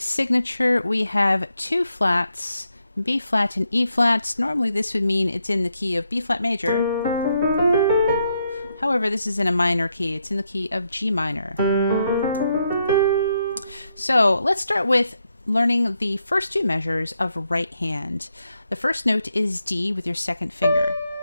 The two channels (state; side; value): inverted; both; correlation -0.80